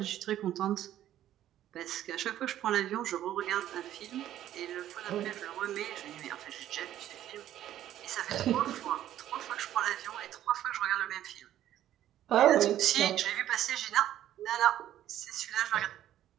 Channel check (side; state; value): left; quieter; 12.2 dB